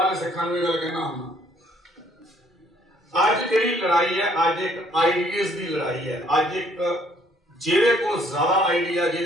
ਸਿੱਖਾਂ ਨੂੰ ਇਹ ਗੱਲ ਕਹਿਣਾ ਹੁੰਦਾ, ਅੱਜ ਜਿਹੜੀ ਲੜਾਈ ਹੈ, ਅੱਜ ਇੱਕ ਆਈਡੀਆਜ਼ ਦੀ ਲੜਾਈ ਹੈ। ਅੱਜ ਇੱਕ ਜਿਹਦੇ ਕੋਲ ਜ਼ਿਆਦਾ ਆਈਡੀਆ,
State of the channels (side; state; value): both; normal; correlation 0.63